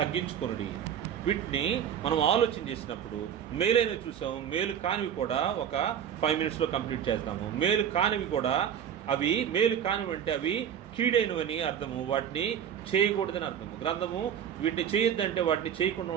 వీటిని మనం ఆలోచన చేసినప్పుడు మేలైనవి చూసాము, మేలు కానివి కూడా ఒక 5 minutesలో కంప్లీట్ చేస్తాము. మేలు కానివి కూడా, అవి మేలు కానివి అంటే అవి కీడైనవని అర్థము, వాటిని చేయకూడదని అర్థము. గ్రంథము వీటిని చేయొద్దంటే వాటిని చేయకుండా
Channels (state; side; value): quieter; left; 8.9 dB